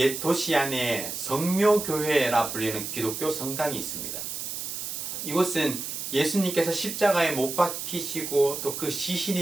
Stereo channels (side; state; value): right; noise; hiss, 5 dB below the sound